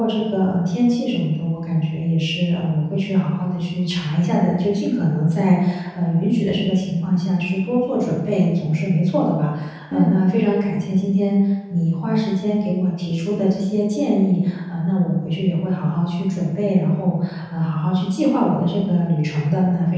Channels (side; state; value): both; identical; correlation 1.00